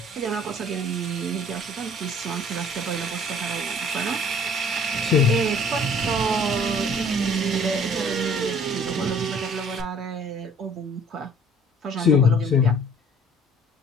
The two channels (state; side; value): normal; both; correlation 0.54